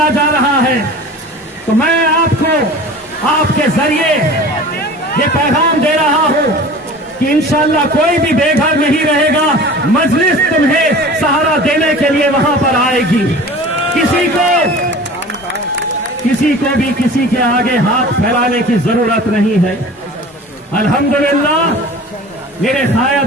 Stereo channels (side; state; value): both; normal; correlation 0.40